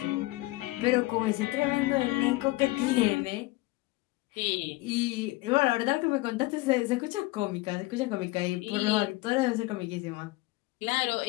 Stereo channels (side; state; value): right; quieter; 20.8 dB